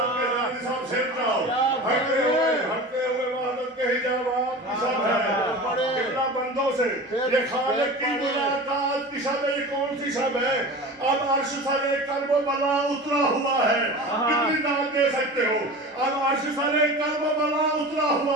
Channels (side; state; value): both; normal; correlation 0.34